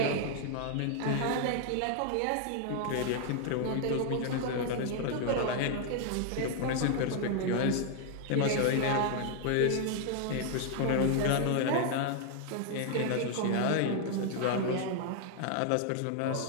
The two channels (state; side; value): different; both; correlation 0.00